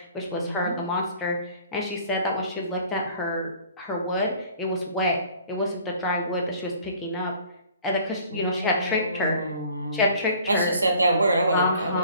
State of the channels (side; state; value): both; inverted; correlation -0.51